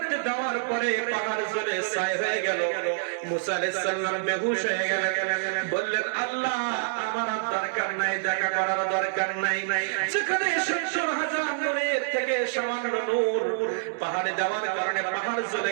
দেওয়ার পরে পাহাড় জ্বলে ছাই হয়ে গেল। মুসা আলাইহিস সালাম বেহুশ হয়ে গেলেন। বললেন, আল্লাহ আমার আর দরকার নাই, দেখা করার দরকার নাই। যেখানে 70,000 নূরের থেকে সামান্য নূর পাহাড়ে দেওয়ার কারণে পাহাড়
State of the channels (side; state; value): left; silent; digital silence